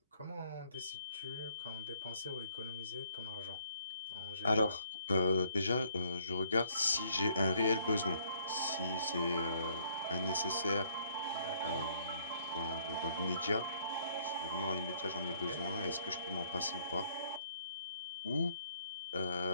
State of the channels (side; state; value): both; inverted; correlation -0.66